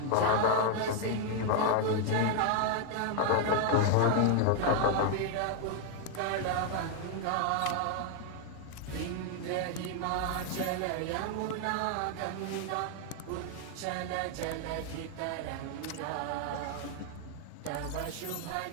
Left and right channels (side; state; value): both; different; correlation 0.00